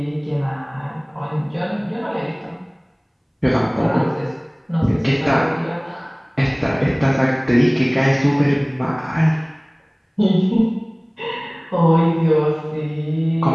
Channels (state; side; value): identical; both; correlation 1.00